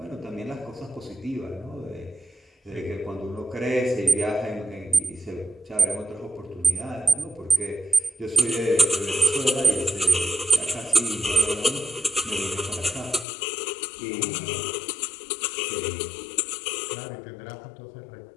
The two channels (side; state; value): right; drops out; at 13.2 s